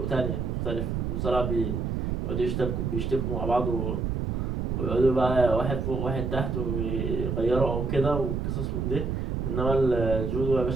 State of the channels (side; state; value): right; noise; rumble, 1 dB below the sound